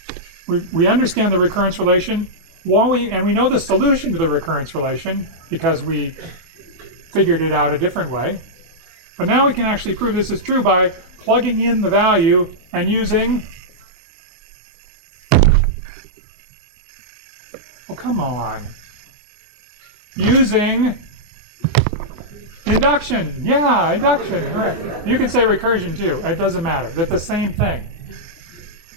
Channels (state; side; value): late; left; 24 ms